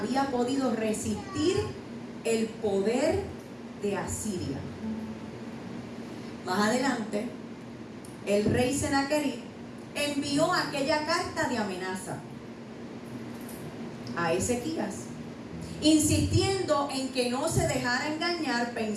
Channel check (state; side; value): identical; both; correlation 1.00